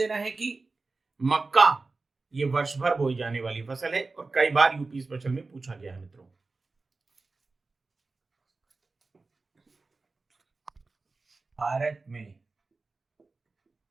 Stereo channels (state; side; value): quieter; left; 3.7 dB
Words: है कि मक्का ये वर्ष भर बोई जाने वाली फसल है और कई बार यूपी स्पेशल में पूछा गया है मित्रों। भारत में